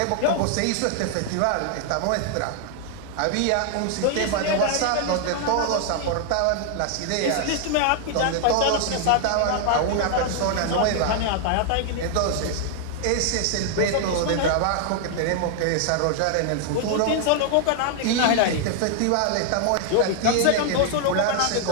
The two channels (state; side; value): different; both; correlation 0.00